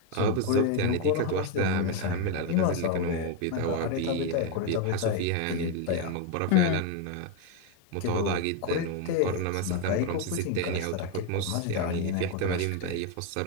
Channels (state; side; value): different; both; correlation 0.02